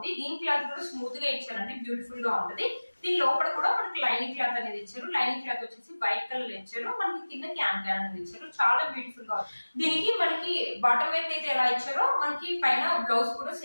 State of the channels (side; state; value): both; inverted; correlation -1.00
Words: దీని క్లాత్ కూడా స్మూత్ గా ఇచ్చారండి. బ్యూటిఫుల్ గా ఉంటది. దీని లోపల కూడా మనకి లైనింగ్ క్లాత్ అనేది ఇచ్చారు. లైనింగ్ క్లాత్ వచ్చేసి వైట్ కలర్ ఇచ్చారు. మనకి కింద క్యాన్ అనేది ఇచ్చారు. చాలా బ్యూటిఫుల్ గా ఉంది. దీనికి మనకి బాటమ్ వైపు అయితే ఎలా ఇచ్చారో మనకి పైన బ్లౌజ్ కూడా